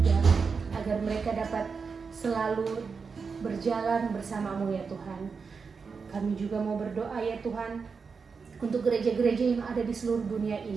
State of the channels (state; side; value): quieter; left; 5.3 dB